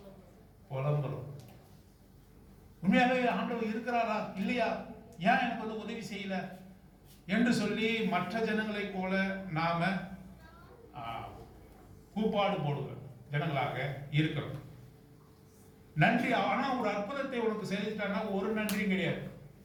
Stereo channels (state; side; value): identical; both; correlation 1.00